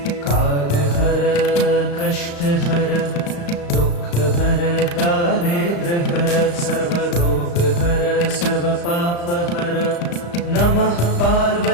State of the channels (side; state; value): right; late; 35 ms